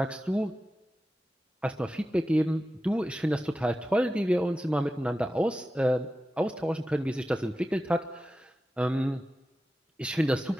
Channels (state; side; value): normal; both; correlation 0.93